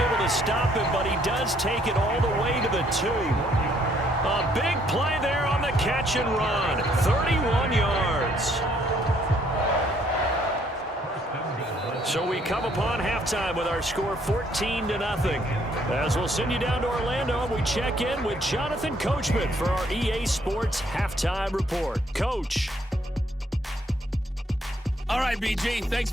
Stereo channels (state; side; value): normal; both; correlation 0.67